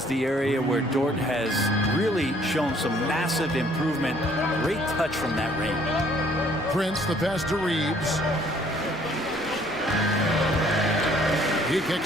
the area where Dort has really shown some massive improvement. Great touch from that range. Prince, the pass to Reeves. He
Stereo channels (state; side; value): normal; both; correlation 0.61